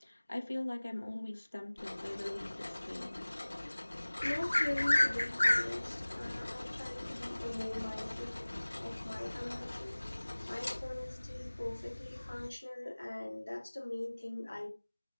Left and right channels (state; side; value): inverted; both; correlation -1.00